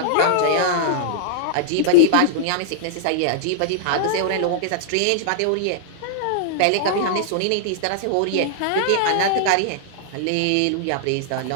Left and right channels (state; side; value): different; both; correlation -0.01